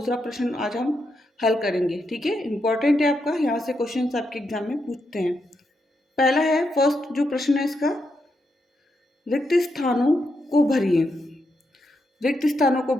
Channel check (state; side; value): normal; both; correlation 0.83